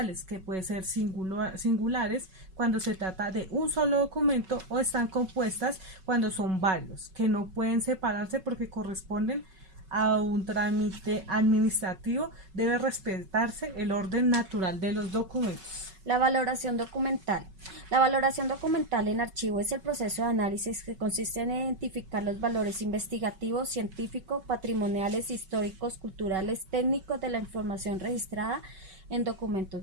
que pueden ser singulares cuando se trata de un solo documento, o están compuestas cuando son varios, que no pueden separarse porque corresponden a un trámite administrativo. Debe respetarse el orden natural de los documentos. La valoración documental. La valoración documental en archivo es el proceso de análisis que consiste en identificar los valores investigativos, científicos, patrimoniales, históricos, culturales, técnicos de la información registrada en documentos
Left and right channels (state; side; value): late; left; 5.3 ms